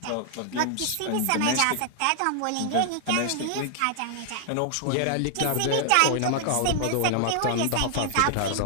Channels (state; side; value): different; both; correlation 0.00